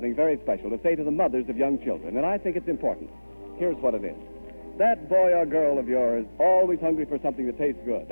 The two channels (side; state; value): both; inverted; correlation -1.00